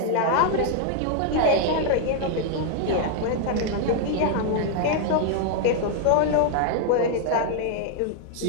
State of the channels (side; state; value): both; different; correlation 0.00